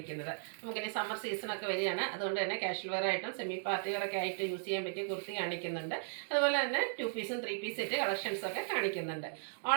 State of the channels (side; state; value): left; silent; digital silence